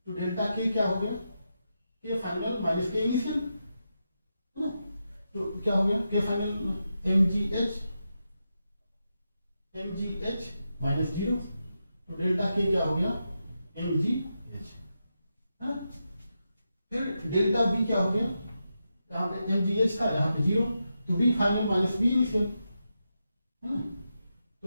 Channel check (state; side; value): inverted; both; correlation -0.87